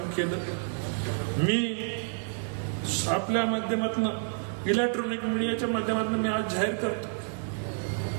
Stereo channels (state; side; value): silent; left; 58 dB below the other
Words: केलं. मी आपल्या माध्यमातून, इलेक्ट्रॉनिक मीडियाच्या माध्यमातून मी आज जाहीर करतो,